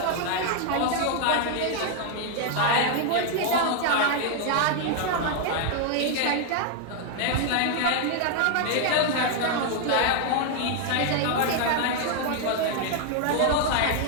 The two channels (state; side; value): different; both; correlation 0.00